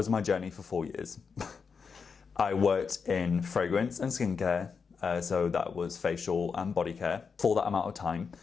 my journey for 4 years. I worked in fragrance and skincare, so that was facial and body care for that amount of time.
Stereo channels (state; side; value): quieter; right; 5.7 dB